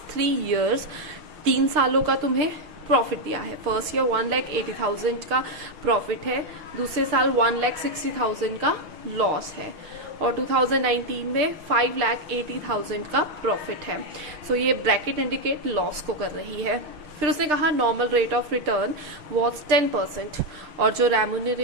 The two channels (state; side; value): late; left; 6.7 ms